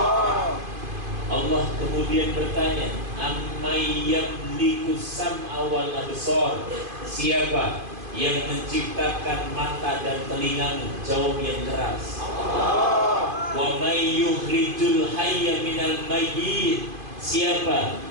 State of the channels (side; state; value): left; late; 2.5 ms